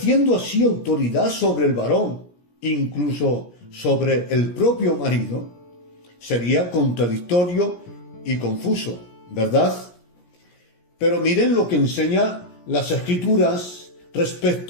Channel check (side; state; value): right; late; 17 ms